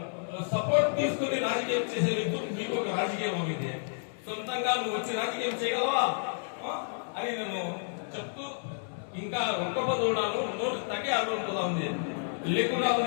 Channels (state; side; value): silent; right; digital silence